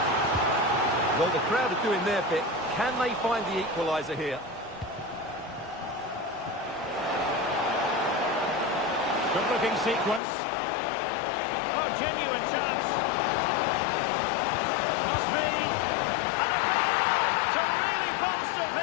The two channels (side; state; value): right; drops out; at 10.2 s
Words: Well, the crowd are doing their bit. Can they find the equaliser here? Good-looking sequence. Oh, genuine chance. Must be. And a goal to really bolster